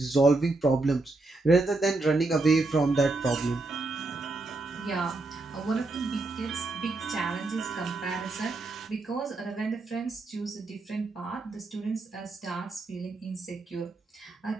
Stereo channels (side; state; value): left; quieter; 3.2 dB